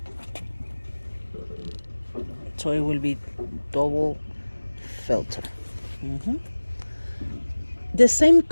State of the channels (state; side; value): inverted; both; correlation -1.00